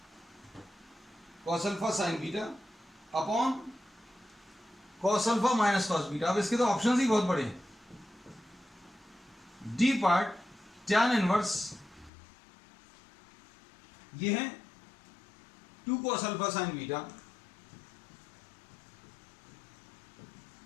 cos alpha sin beta upon cos alpha minus cos beta. अब इसके तो ऑप्शंस ही बहुत बड़े हैं। डी पार्ट tan इनवर्स ये है 2 cos alpha sin beta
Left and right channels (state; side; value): drops out; right; at 12.1 s